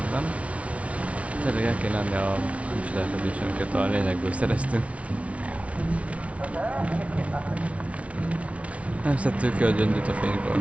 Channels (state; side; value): late; left; 0.064 ms